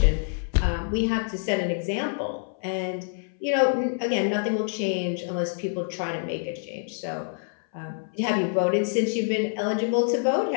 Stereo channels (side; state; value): right; silent; 61 dB below the other